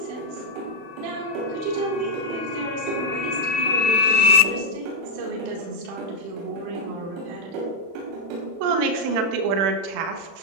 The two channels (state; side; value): late; left; 35 ms